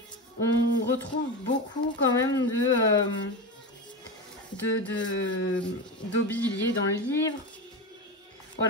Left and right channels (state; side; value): normal; both; correlation 0.20